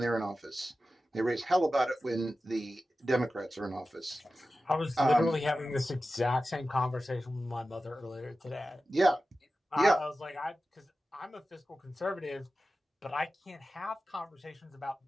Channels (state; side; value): normal; both; correlation 0.94